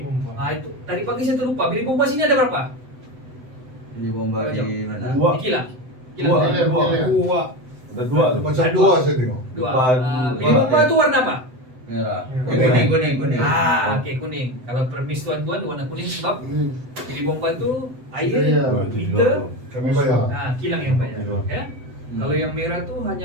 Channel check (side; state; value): left; late; 7.9 ms